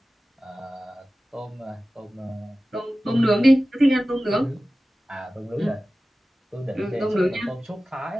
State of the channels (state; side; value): normal; both; correlation 0.96